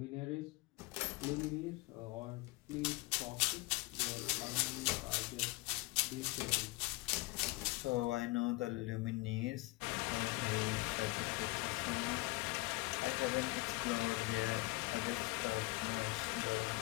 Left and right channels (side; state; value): right; quieter; 22.5 dB